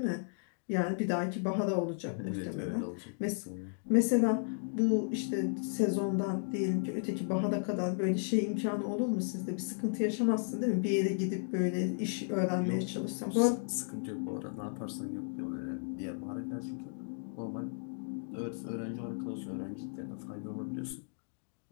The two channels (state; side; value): silent; right; digital silence